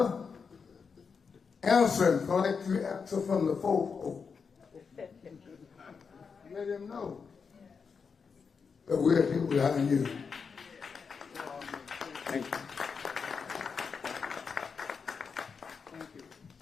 answering like you answer from the folk. Let him know that we're here behind you. Thank you.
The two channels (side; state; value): right; quieter; 5.6 dB